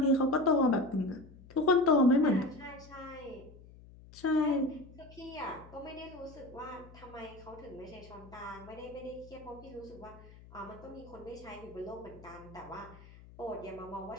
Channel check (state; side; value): noise; left; hum, 20 dB below the sound